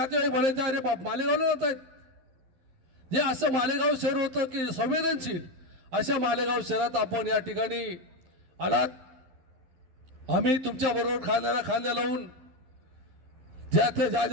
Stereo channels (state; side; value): late; left; 12 ms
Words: म्हणायचे अरे बाप मालेगावला जात आहेत. जे असं मालेगाव शहर होतं की संवेदनशील, अशा मालेगाव शहरात आपण या ठिकाणी आलात. आम्ही तुमच्या बरोबर खांद्याला खांद्या लावून ज्या